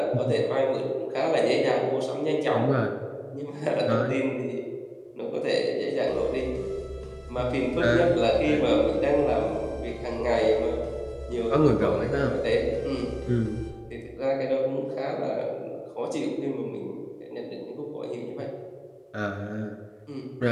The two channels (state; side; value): identical; both; correlation 1.00